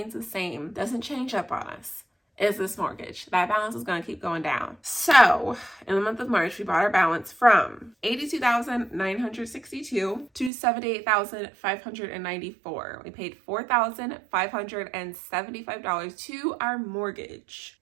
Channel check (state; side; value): drops out; left; at 10.5 s